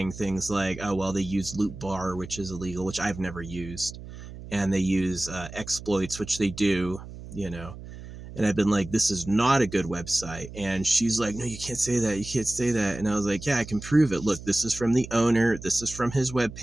things like, oh, well, they use Loot Bar, which is illegal, which I've never used, and they use exploits, which they do, you know. And I've been like, this is not a good website. And she's like, no, you can't say that. You can't say that. And I was like, yeah, I can prove it. Look, this is from the owner. This is from his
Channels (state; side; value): noise; right; hum, 13 dB below the sound